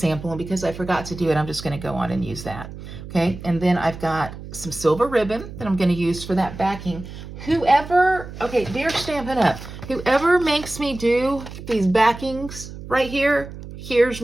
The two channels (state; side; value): noise; right; hum, 12 dB below the sound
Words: and because I forgot to do it, I'm just going to go on and use that. Okay, and then I've got some silver ribbon that I'm going to use for that backing. Whoever, okay, they're Stampin' Up. Whoever makes me do these backings right here, here's